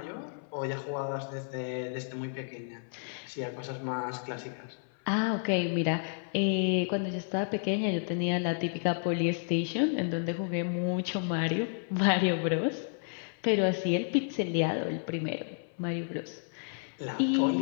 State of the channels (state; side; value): silent; right; 57 dB below the other